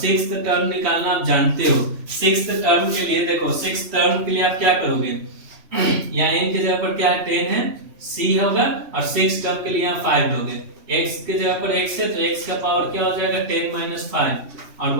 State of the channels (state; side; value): late; left; 3.1 ms